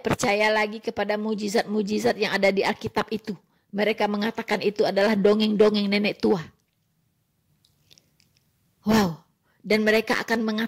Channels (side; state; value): both; identical; correlation 1.00